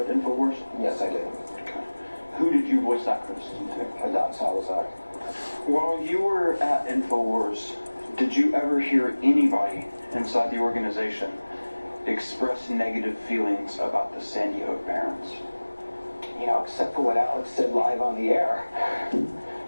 Infowars? Yes, I did. Okay. Who did you voice that criticism to? Adon Salazar. While you were at Infowars, did you ever hear anybody inside the organization express negative feelings about the Sandy Hook parents? You know, except for what Alex said live on the air.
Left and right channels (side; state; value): both; inverted; correlation -1.00